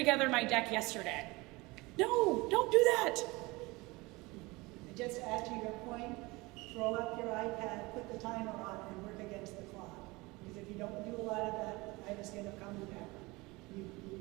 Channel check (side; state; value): left; quieter; 23.2 dB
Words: my deck yesterday. No, don't do that. And just to add to your point, throw up your iPad, put the timer on, and work against the clock. Because if you don't do a lot of that, I just end up coming back.